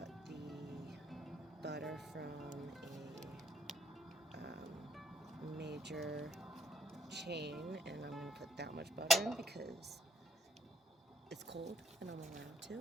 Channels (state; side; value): normal; both; correlation 0.62